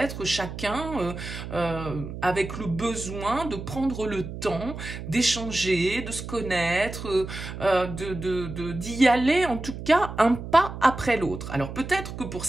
chacun avec le besoin de prendre le temps d'échanger, de se connaître, d'y aller en tout cas un pas après l'autre. Alors peut-être que pour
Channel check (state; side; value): noise; right; hum, 9 dB below the sound